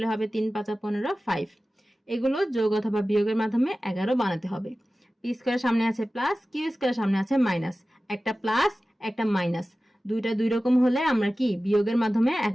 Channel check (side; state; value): both; normal; correlation 0.96